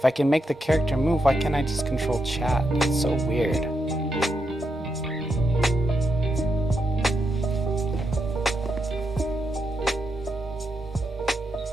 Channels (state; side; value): normal; both; correlation 0.83